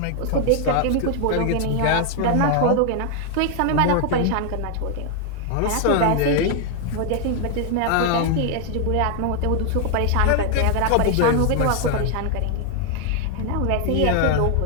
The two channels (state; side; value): different; both; correlation 0.00